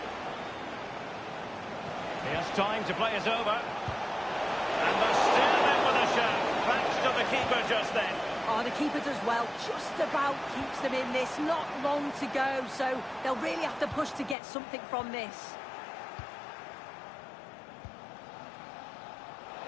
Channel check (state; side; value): drops out; right; at 14.4 s